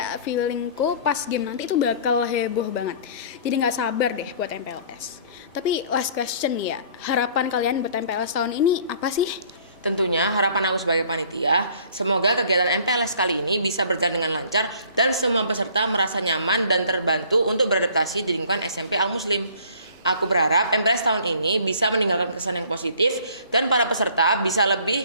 feelingku pas game nanti itu bakal heboh banget. Jadi nggak sabar deh buat MPLS. Tapi last question nih ya, harapan kalian buat MPLS tahun ini apa sih? Tentunya harapan aku sebagai panitia, semoga kegiatan MPLS kali ini bisa berjalan dengan lancar dan semua peserta merasa nyaman dan terbantu untuk beradaptasi di lingkungan SMP Al Muslim. Aku berharap MPLS tahun ini bisa meninggalkan kesan yang positif dan para peserta bisa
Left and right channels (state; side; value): inverted; both; correlation -0.52